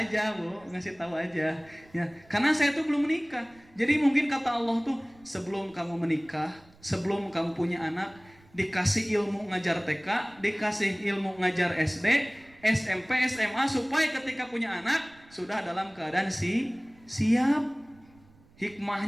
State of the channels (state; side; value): noise; right; rumble, 28 dB below the sound